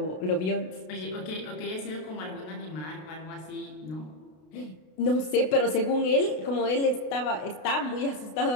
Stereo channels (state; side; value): late; right; 32 ms